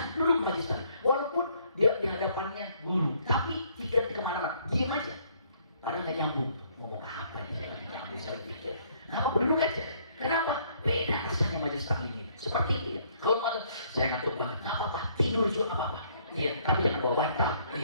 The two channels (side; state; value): both; inverted; correlation -0.65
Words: Duduk majelis taklim. Walaupun dia di hadapannya guru, tapi pikir kemana-mana, diam aja. Karena nggak nyambung, ngomong apa nih saya nggak nyambung, saya pikir. Kenapa berduduk aja? Kenapa? Beda rasanya majelis taklim ini. Seperti itu ya. Kalau nggak, saya ngantuk banget, nggak apa-apa, tidur juga nggak apa-apa. Iya, tapi jangan bawa bantal.